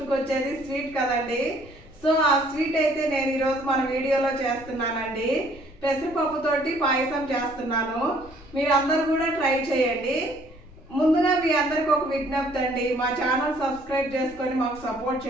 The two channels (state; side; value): noise; left; rumble, 23 dB below the sound